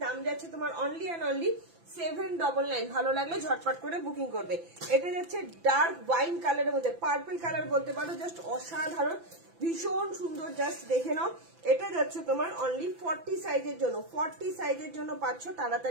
দাম যাচ্ছে তোমার অনলি অ্যান্ড অনলি 799। ভালো লাগলে ঝটপট করে বুকিং করবে। এটা যাচ্ছে ডার্ক ওয়াইন কালারের মধ্যে, পার্পল কালার বলতে পারো, জাস্ট অসাধারণ, ভীষণ সুন্দর, জাস্ট দেখে নাও। এটা যাচ্ছে তোমার অনলি 40 সাইজের জন্য, 40 সাইজের জন্য পাচ্ছ,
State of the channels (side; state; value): left; late; 5.9 ms